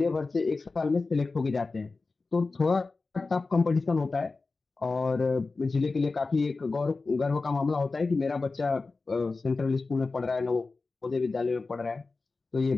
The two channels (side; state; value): right; quieter; 3.8 dB